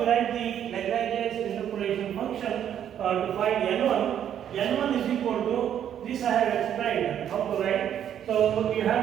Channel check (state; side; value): quieter; left; 9.8 dB